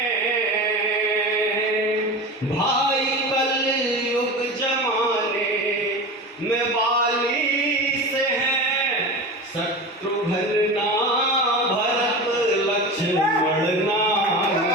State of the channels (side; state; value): both; normal; correlation 0.29